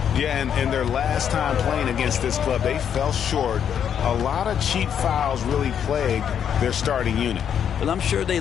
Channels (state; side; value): quieter; right; 8.5 dB